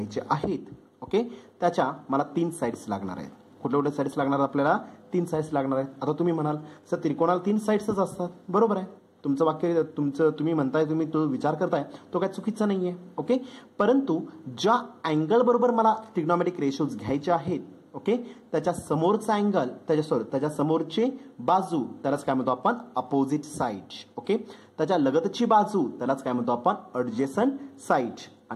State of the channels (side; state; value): both; identical; correlation 1.00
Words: आहेत. ओके, त्याच्या मला 3 साइड्स लागणार आहेत. कुठल्या कुठल्या साइड्स लागणार? आपल्याला 3 साइड्स लागणार आहेत. आता तुम्ही म्हणाल सर त्रिकोणाला 3 साइड्सच असतात. बरोबर आहे, तुमचं वाक्य तुम्ही म्हणताय, तुम्ही तो विचार करताय तो काय चुकीचा नाहीये. ओके, परंतु ज्या अँगल बरोबर मला ट्रिग्नोमेट्रिक रेशोज घ्यायचे आहेत ओके त्याच्या समोरचा अँगल, त्याच्या समोरची बाजू त्यालाच काय म्हणतो आपण? Opposite side. ओके, त्याच्या लगतची बाजू त्यालाच काय म्हणतो आपण? ॲडजेसंट साइड.